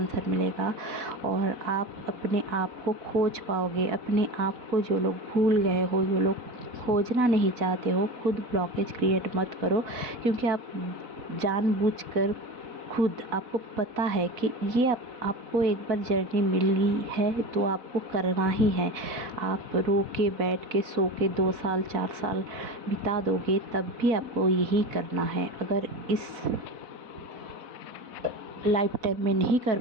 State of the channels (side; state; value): left; late; 4.1 ms